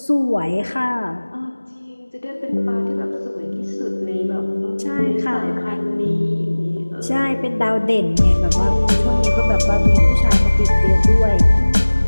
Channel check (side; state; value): both; inverted; correlation -1.00